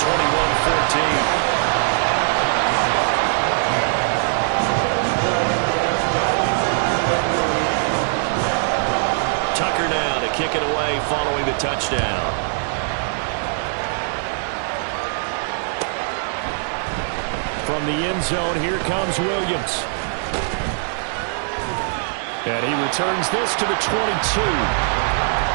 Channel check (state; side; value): silent; left; 57 dB below the other